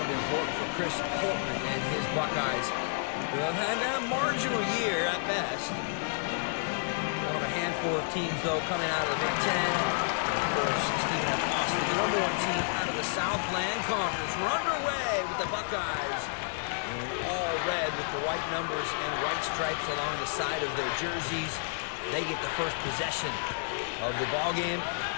be important for Chris Holtman and his Buckeyes, who have had a marginal year at best. One of a handful of teams, though, coming out of the Big Ten. And of course, Stephen F. Austin, the number 1 team out of the Southland Conference. We're underway with the Buckeyes in all red with the white numbers and white stripes along the side of their jerseys. They get the first possession of the ball game.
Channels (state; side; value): silent; right; digital silence